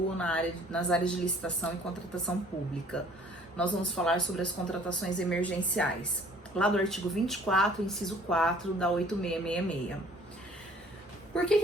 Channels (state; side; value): normal; both; correlation 0.55